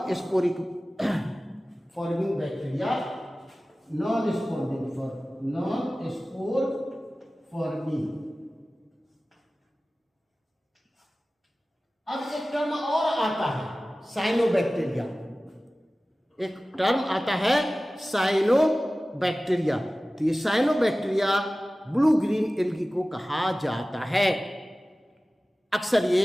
sporic forming bacteria, non spore forming. अब एक टर्म और आता है साइनोबैक्टीरिया, एक टर्म आता है साइनोबैक्टीरिया। तो ये साइनोबैक्टीरिया ब्लू ग्रीन एल्गी को कहा जाता है। अक्सर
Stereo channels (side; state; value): both; normal; correlation 0.97